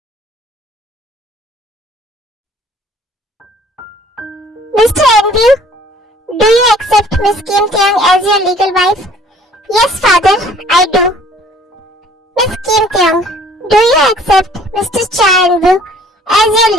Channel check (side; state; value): both; normal; correlation 0.55